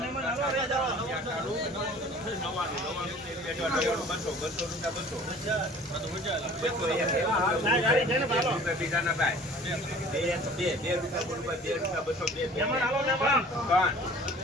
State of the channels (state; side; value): normal; both; correlation 0.48